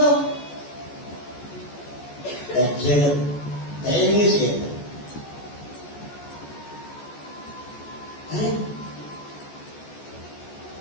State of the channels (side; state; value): right; late; 14 ms